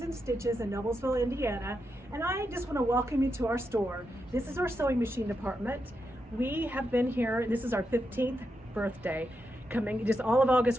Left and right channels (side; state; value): both; normal; correlation 0.85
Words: in Stitches in Noblesville, Indiana, and I just want to welcome you to our store. This is our sewing machine department. We have been here, this is our 15th birthday. Coming, just all of August